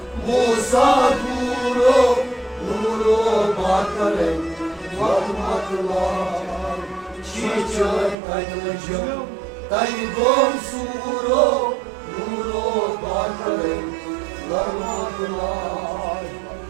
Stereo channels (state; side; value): drops out; left; at 8.2 s